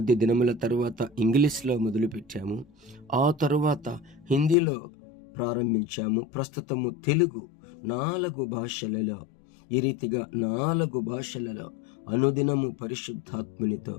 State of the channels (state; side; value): drops out; right; at 4.5 s